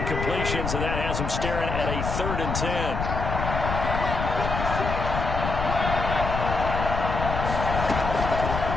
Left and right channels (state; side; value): noise; left; rumble, 3 dB below the sound